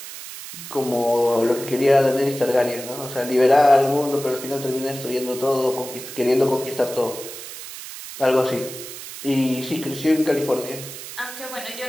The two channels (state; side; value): noise; right; hiss, 12 dB below the sound